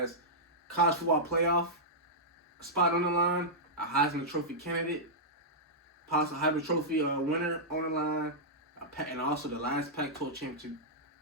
college football playoff spot on the line, a Heisman Trophy candidate, possible Heisman Trophy winner on the line, and also the last Pac-12 championship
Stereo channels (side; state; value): both; normal; correlation -0.11